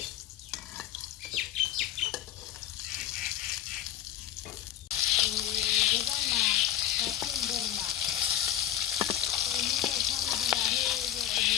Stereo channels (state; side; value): quieter; right; 11.6 dB